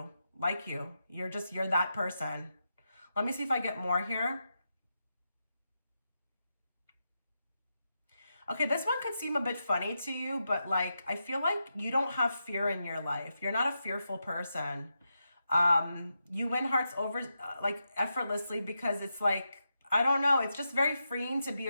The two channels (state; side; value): inverted; both; correlation -0.86